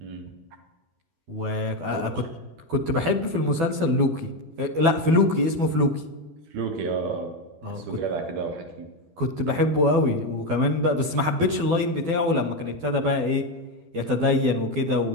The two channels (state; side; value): late; left; 12 ms